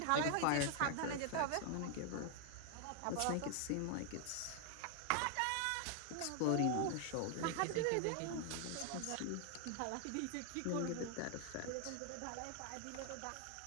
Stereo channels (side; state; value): both; different; correlation 0.00